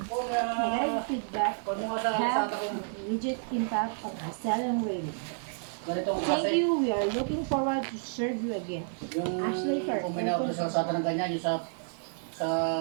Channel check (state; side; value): silent; left; 55 dB below the other